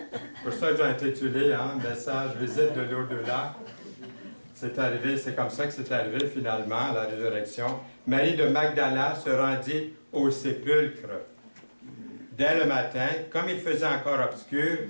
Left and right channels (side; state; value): both; inverted; correlation -1.00